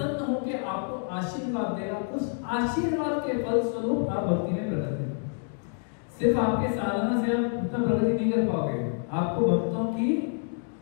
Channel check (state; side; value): silent; right; 59 dB below the other